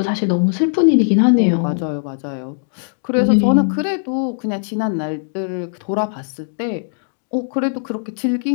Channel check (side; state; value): right; silent; digital silence